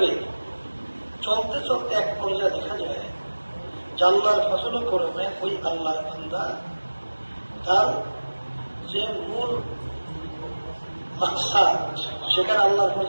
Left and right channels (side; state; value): both; inverted; correlation -1.00